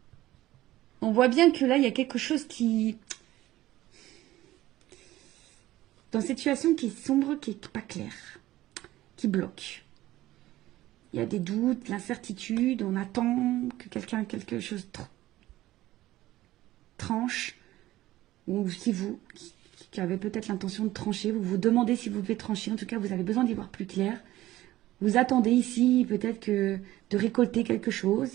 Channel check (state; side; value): quieter; left; 15.8 dB